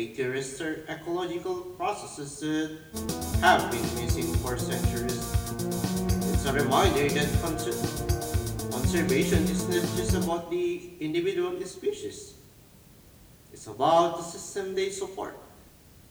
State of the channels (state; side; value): identical; both; correlation 1.00